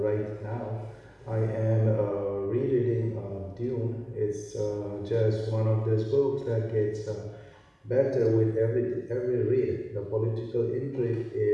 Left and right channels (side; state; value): both; identical; correlation 1.00